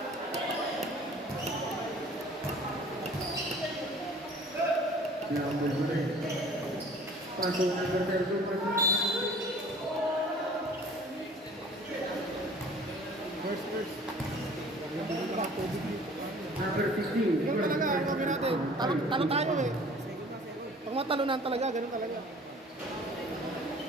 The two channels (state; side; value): normal; both; correlation 0.49